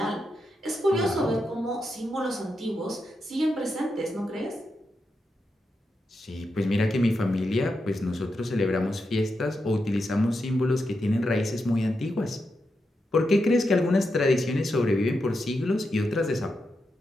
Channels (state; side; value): normal; both; correlation 0.86